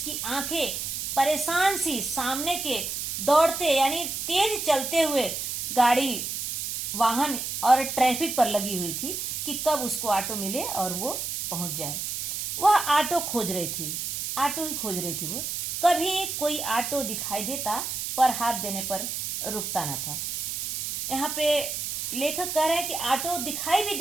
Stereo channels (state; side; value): noise; right; hiss, 3 dB below the sound